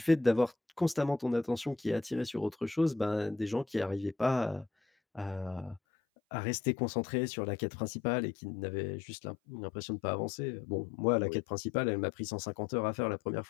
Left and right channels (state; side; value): drops out; right; at 5.8 s